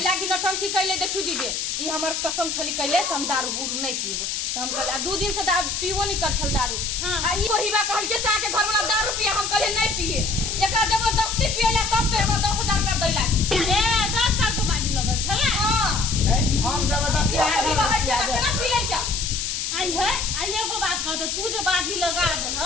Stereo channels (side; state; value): left; noise; hiss, 2 dB below the sound